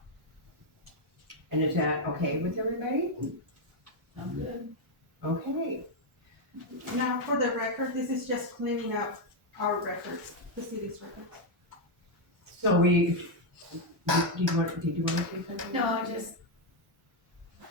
And is that okay with everybody? Sounds good. Okay. Now, for the record, this is just cleaning up our records, the city's records. So we, did you want to say something? No, I just,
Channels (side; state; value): both; normal; correlation 0.02